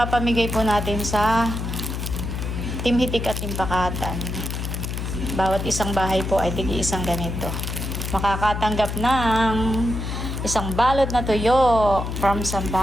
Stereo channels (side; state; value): left; noise; hum, 4 dB below the sound